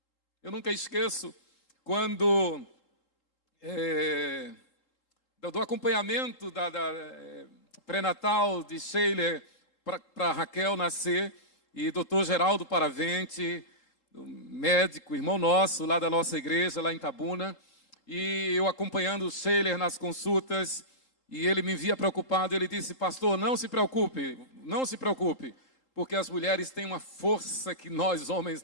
Eu nunca esqueço quando do acompanhamento da pré-natal de Sheila para Raquel nascer, e doutor Geraldo Paravente, médico, irmão nosso, lá da nossa igreja, lá em Itabuna, e eu acompanhando Sheila nas consultas, e ele me via preocupado, ele disse: pastor, não se preocupe, porque as mulheres têm uma força que nós homens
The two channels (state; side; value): late; right; 3.8 ms